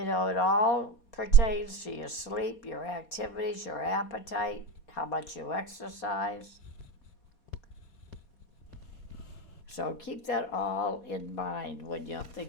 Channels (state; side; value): late; right; 4.2 ms